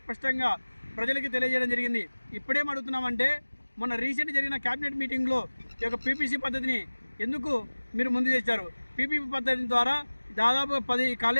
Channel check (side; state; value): both; inverted; correlation -1.00